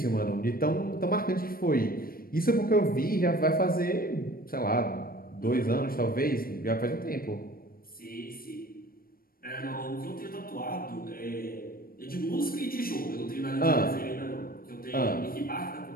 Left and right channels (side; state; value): right; late; 0.43 ms